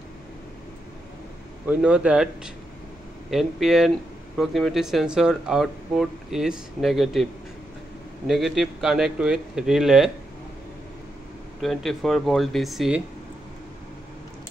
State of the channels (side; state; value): both; normal; correlation 0.83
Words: We know that NPN proximity sensor output is negative. Negative connect with relay 24 volt DC.